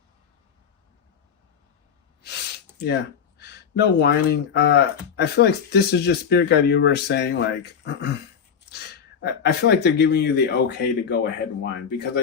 yeah, no whining. I feel like this is just Spirit Guide Universe saying, like, I feel like they're giving you the okay to go ahead and whine, because I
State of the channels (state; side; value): quieter; right; 7.2 dB